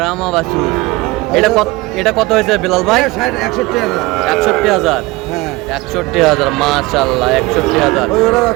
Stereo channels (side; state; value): left; quieter; 21.7 dB